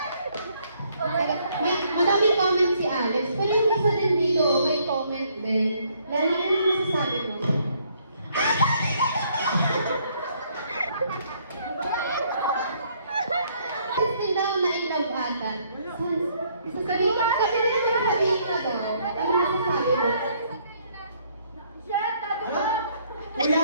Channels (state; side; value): inverted; both; correlation -0.67